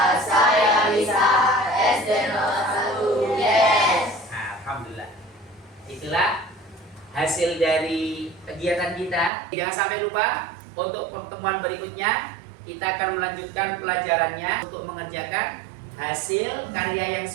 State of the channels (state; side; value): drops out; left; at 9.3 s